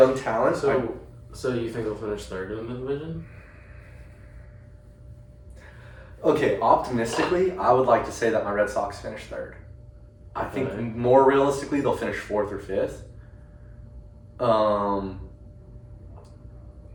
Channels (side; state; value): both; identical; correlation 1.00